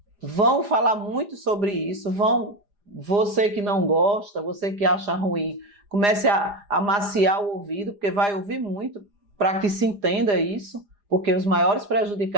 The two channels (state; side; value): late; left; 4.9 ms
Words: vão falar muito sobre isso, você que não gosta, você que acha ruim, comece a amaciar o ouvido, porque vai ouvir muito para que se entenda isso, porque os maiores